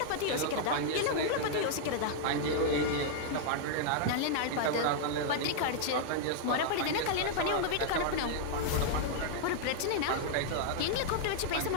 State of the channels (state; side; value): different; both; correlation -0.01